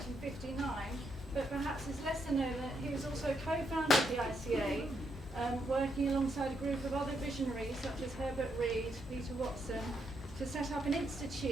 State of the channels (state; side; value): normal; both; correlation 0.78